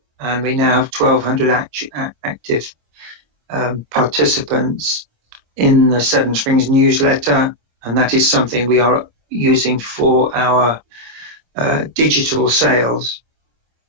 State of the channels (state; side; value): late; left; 26 ms